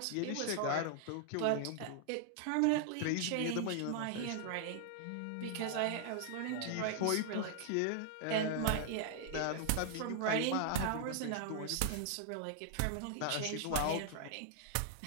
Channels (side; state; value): both; different; correlation -0.01